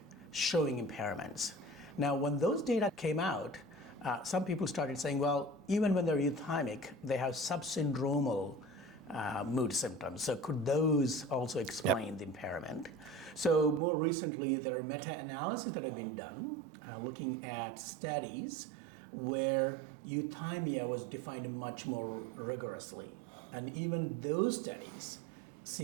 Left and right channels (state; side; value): drops out; left; at 13.8 s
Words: showing impairments. Now, when those data came out, some people started saying, well, even when they're euthymic, they have subsyndromal mood symptoms. So could those also explain the impairment? So more recently, there are meta-analyses that have been done looking at studies where euthymia was defined much more rigorously. And even those studies